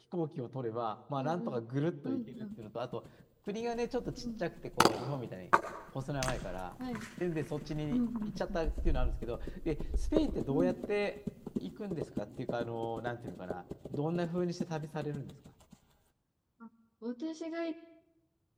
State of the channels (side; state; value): both; identical; correlation 1.00